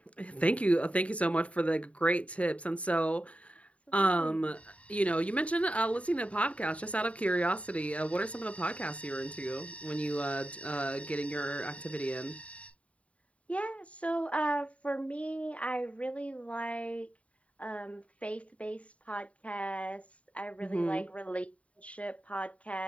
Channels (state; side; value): late; right; 0.065 ms